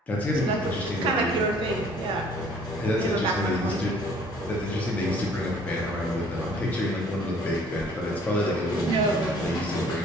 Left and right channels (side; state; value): both; normal; correlation 0.56